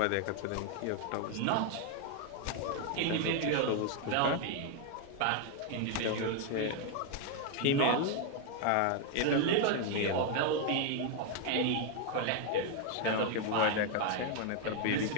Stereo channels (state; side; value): different; both; correlation 0.00